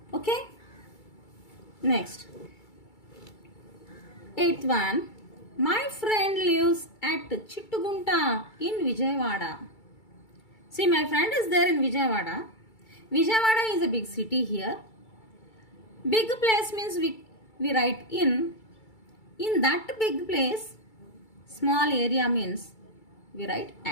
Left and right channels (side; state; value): right; late; 2.3 ms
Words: Okay. Next. Eighth one. My friend lives at Chittugunta in Vijayawada. See, my friend is there in Vijayawada. Vijayawada is a big city here. Big place means we write in. In that big place, small area means we write